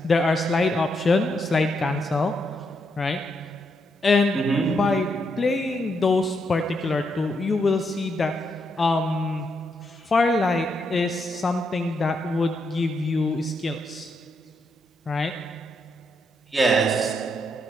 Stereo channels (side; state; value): both; normal; correlation 0.79